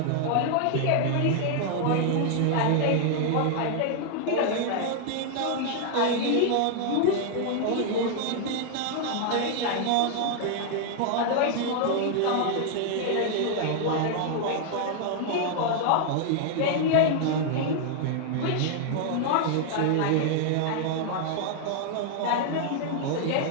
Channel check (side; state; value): both; different; correlation 0.00